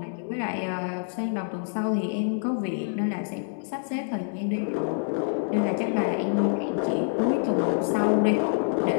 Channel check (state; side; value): silent; right; 60 dB below the other